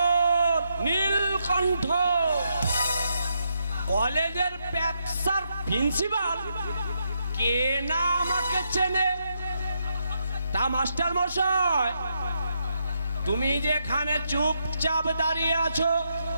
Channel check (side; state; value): both; inverted; correlation -0.80